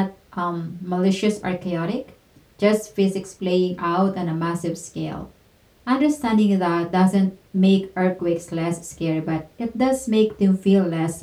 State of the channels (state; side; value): identical; both; correlation 1.00